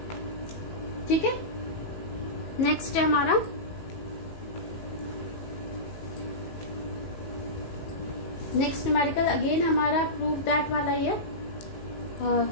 ठीक है। नेक्स्ट है हमारा नेक्स्ट न्यूमेरिकल, अगेन हमारा प्रूफ दैट वाला ही है।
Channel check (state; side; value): late; right; 19 ms